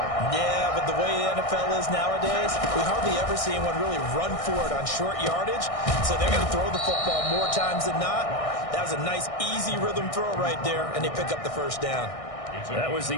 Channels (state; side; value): late; right; 1.6 ms